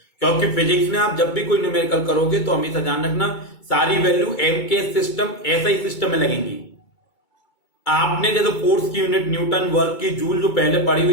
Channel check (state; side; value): late; right; 2.3 ms